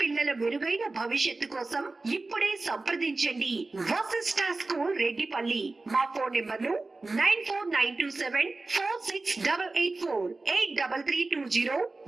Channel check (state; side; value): quieter; left; 3.4 dB